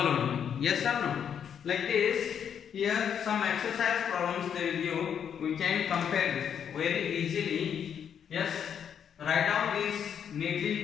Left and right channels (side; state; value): right; quieter; 8.2 dB